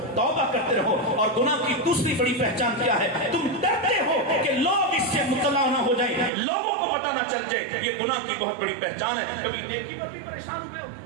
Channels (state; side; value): drops out; left; at 6.3 s